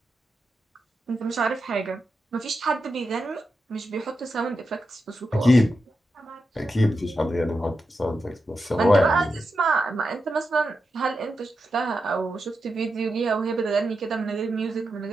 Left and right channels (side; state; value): both; normal; correlation 0.88